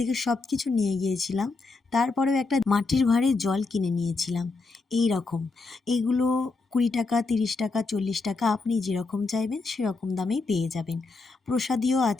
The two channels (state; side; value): quieter; right; 3.8 dB